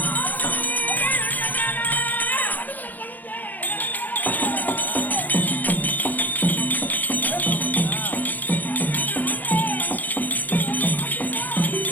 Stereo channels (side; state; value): right; late; 0.083 ms